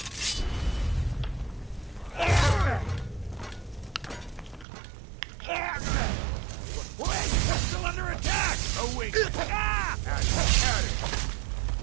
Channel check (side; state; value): left; drops out; at 4.7 s